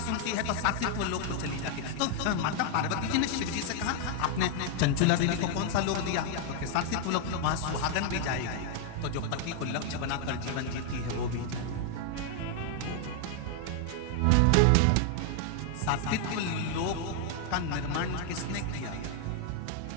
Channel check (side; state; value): both; different; correlation 0.00